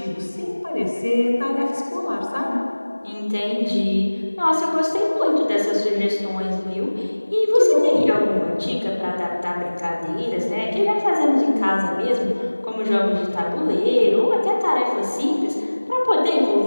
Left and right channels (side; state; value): both; inverted; correlation -1.00